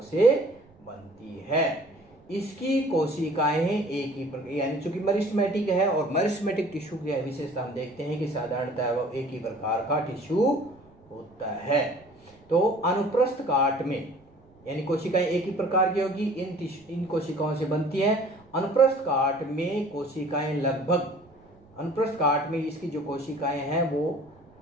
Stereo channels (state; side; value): noise; right; rumble, 29 dB below the sound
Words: से बनती है। इसकी कोशिकाएं एक ही प्रकार, यानी चूंकि मेरिस्टेमेटिक है और मेरिस्टेमेटिक टिश्यू की विशेषता हम देखते हैं कि साधारणतः वो एक ही प्रकार का टिश्यू होता है। तो अनुप्रस्थ काट में यानी कोशिकाएं एक ही प्रकार की होगी, इन कोशिकाओं से बनती है। अनुप्रस्थ काट में कोशिकाएं लगभग, अनुप्रस्थ काट में इसकी जो कोशिकाएं हैं वो